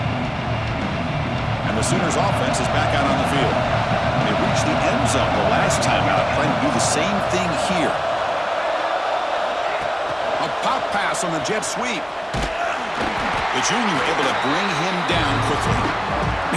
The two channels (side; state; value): both; identical; correlation 1.00